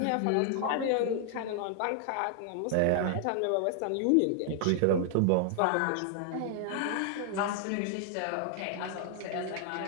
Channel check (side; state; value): both; different; correlation 0.00